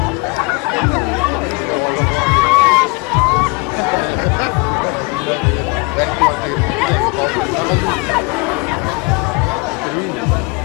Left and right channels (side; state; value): right; quieter; 27.6 dB